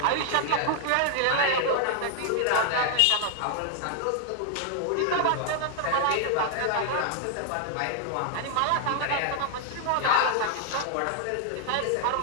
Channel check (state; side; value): different; both; correlation 0.00